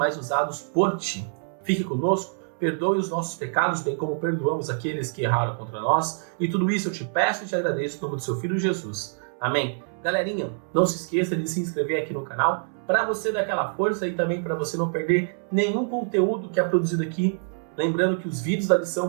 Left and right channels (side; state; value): left; silent; 61 dB below the other